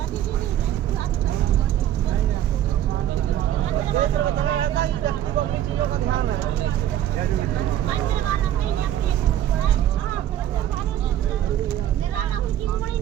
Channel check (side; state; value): left; quieter; 11.7 dB